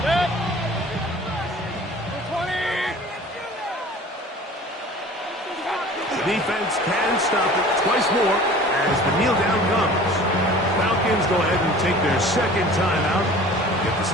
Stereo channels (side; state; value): both; normal; correlation 0.44